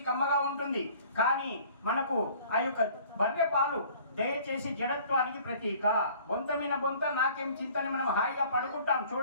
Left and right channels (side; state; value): both; inverted; correlation -0.52